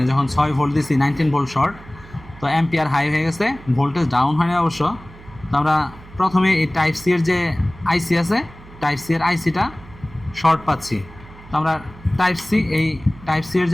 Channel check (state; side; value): noise; right; hum, 20 dB below the sound